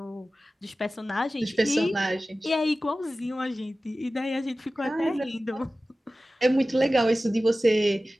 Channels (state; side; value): normal; both; correlation 0.96